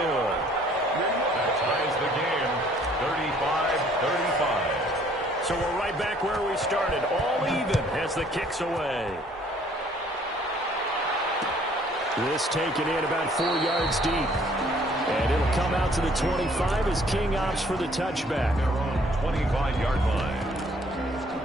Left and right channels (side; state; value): both; normal; correlation 0.60